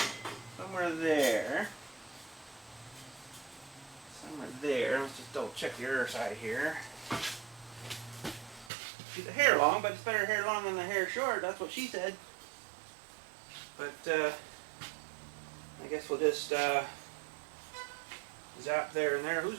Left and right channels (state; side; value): drops out; left; at 8.7 s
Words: somewhere there. Let's just double check the other side here. Keep the hair long, but it's better hair long than the hair short. That's what she said. But I guess we'll just zap there and there.